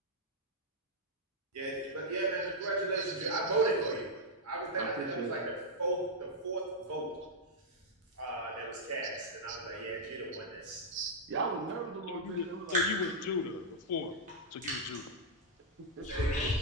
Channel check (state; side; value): normal; both; correlation -0.06